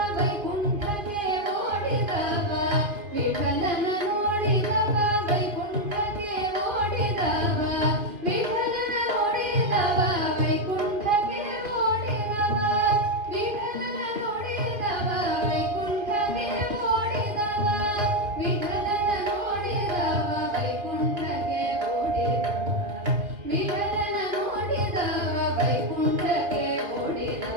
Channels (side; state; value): left; late; 2.5 ms